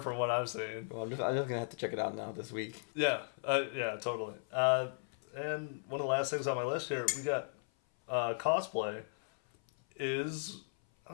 what I've seen. Well, I'm just gonna have to check it out now this week. Yeah, totally. And one of the last things on my list here, we got Cosplay. I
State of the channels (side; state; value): right; silent; 54 dB below the other